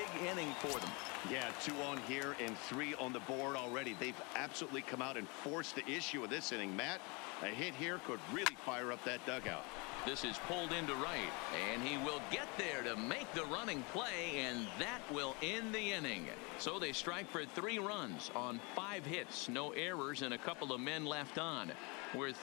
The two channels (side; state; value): right; quieter; 29.8 dB